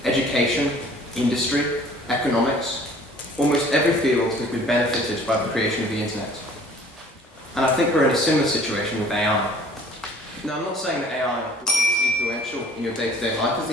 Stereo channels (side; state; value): both; normal; correlation 0.52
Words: education, industry, economics, almost every field has been benefited by the creation of the internet. And I think we're in a similar situation with AI. Now, I'm not saying that AI will be as influential in your day-to-day life as the